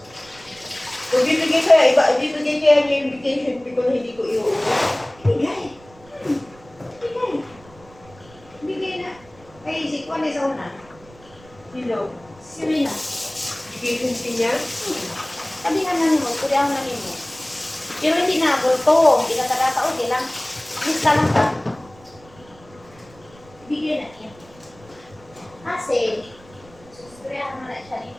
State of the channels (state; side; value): noise; right; rumble, 24 dB below the sound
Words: Kung bibigay kaya, bibigay kaya niya yung vacation fee ko na hindi ko iuwi. Ibigay. Ibigay. Ibigay na. Ay, si Kwan sa una. Sino? Si Rina. Vacation fee niya? Sabi nga namin mo, pwede ako namin mo. Pero hindi na, bulto. Hindi ka kadata, okay lang. Lista lang ka. Ibigay na niya. Kasi, susustriyahan mo na siya ni